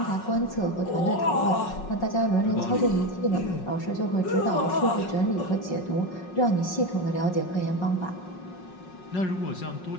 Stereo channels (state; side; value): late; right; 5.5 ms